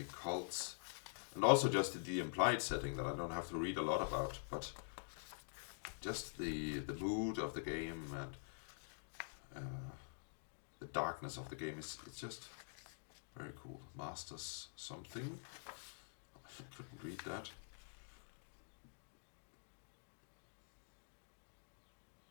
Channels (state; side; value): silent; right; digital silence